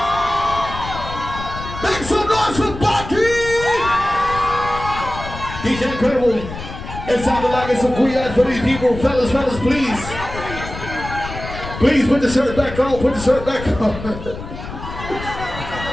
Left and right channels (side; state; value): left; noise; rumble, 10 dB below the sound